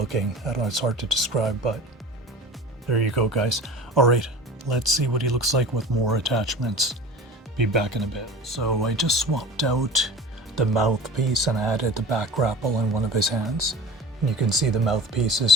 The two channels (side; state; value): both; normal; correlation 0.37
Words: I don't know, it's hard to describe, but there you go, guys. All right, let's see what he looks like with more attachments. Be back in a bit. So I just swapped out the mouthpiece and added the back grapple in one of his hands. And you can see the mouthpiece